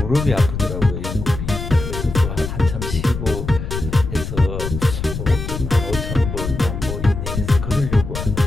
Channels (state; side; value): noise; left; rumble, 6 dB below the sound